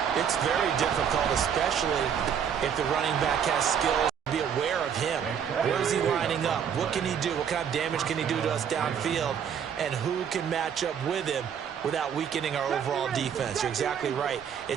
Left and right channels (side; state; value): left; quieter; 8.0 dB